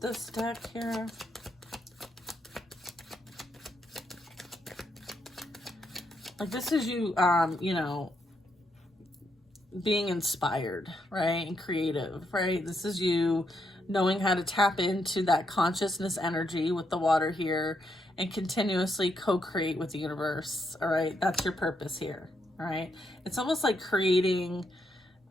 deck here? Like, this is you, you know, being inspired, right? And creative, right? This is you knowing how to tap into that consciousness energy with the water here and continuously co-create with the universe, all right? That's your purpose here, all right? It's almost like creating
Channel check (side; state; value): both; normal; correlation 0.79